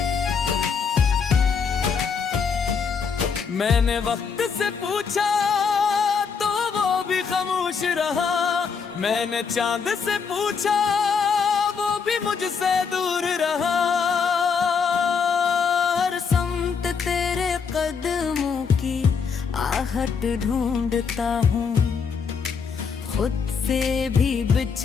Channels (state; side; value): quieter; right; 5.9 dB